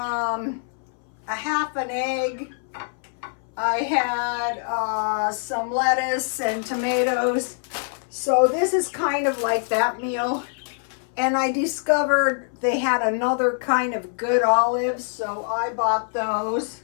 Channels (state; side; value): silent; right; 59 dB below the other